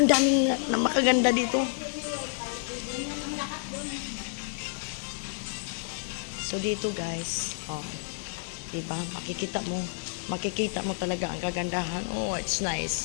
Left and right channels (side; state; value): right; silent; digital silence